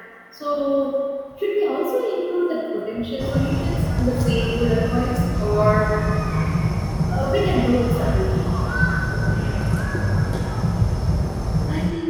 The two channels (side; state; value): both; identical; correlation 1.00